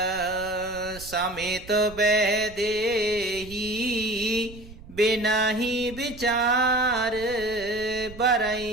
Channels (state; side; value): noise; right; rumble, 17 dB below the sound